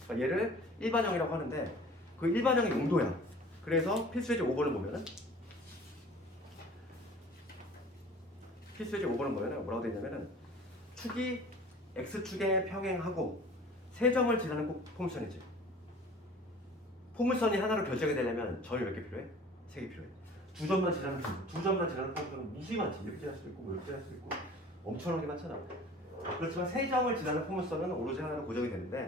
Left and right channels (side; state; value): both; normal; correlation 0.45